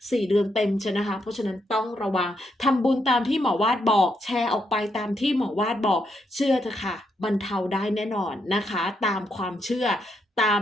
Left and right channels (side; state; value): both; normal; correlation 0.79